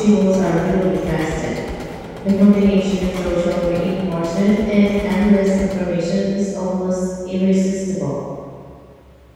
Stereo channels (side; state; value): both; identical; correlation 1.00